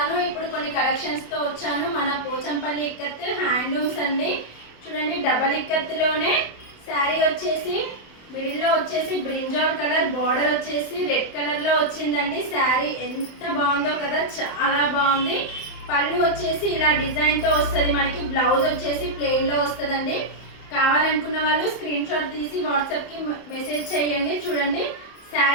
ఇప్పుడు కొన్ని కలెక్షన్స్తో వచ్చాను. మన పోచంపల్లి ఇక్కత్ హ్యాండ్లూమ్స్ అండి. చూడండి, డబల్ ఇక్కత్లోనే శారీ వచ్చేసి మిడిల్లో వచ్చేసి బ్రింజాల్ కలర్, బార్డర్ వచ్చేసి రెడ్ కలర్లో వచ్చిందండి. శారీ ఎంత బాగుందో కదా, చాలా బాగుంది. పళ్ళు వచ్చేసి ఇలా డిజైన్తో వస్తుంది మనకి. బ్లౌజ్ వచ్చేసి ప్లెయిన్లో వస్తుందండి. కావాలనుకున్న వాళ్ళు స్క్రీన్ షాట్ తీసి వాట్సాప్కి మెసేజ్ చేయండి. చూడండి,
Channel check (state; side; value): late; right; 27 ms